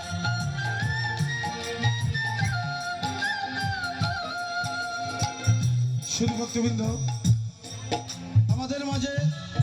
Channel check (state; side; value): identical; both; correlation 1.00